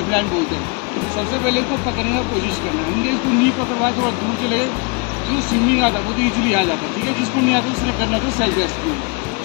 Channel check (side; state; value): right; quieter; 31.2 dB